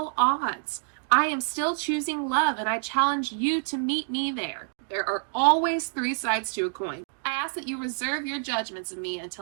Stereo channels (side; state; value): left; silent; digital silence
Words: odds, I am still choosing love and I challenge you to meet me there. There are always three sides to a coin. I ask that you reserve your judgments of me